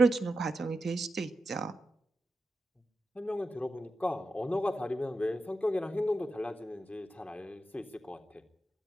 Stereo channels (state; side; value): normal; both; correlation 0.90